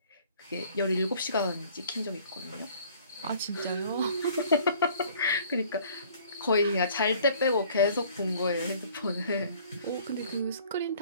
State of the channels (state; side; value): inverted; both; correlation -0.54